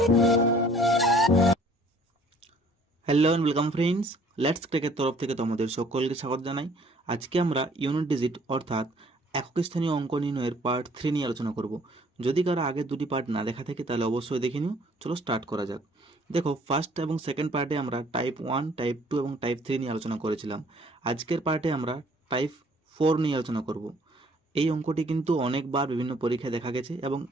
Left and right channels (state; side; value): normal; both; correlation 0.57